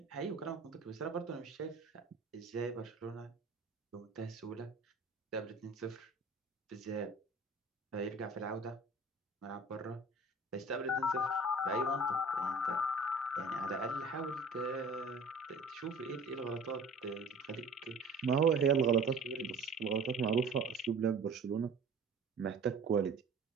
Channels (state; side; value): quieter; left; 3.1 dB